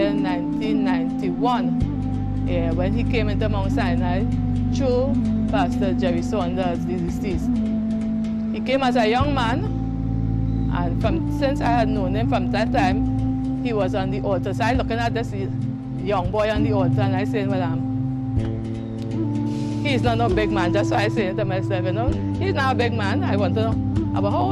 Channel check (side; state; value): both; identical; correlation 1.00